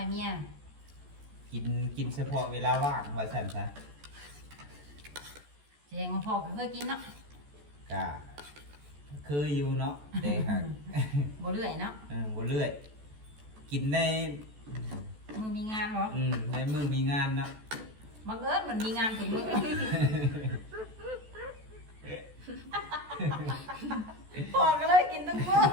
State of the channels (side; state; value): left; late; 14 ms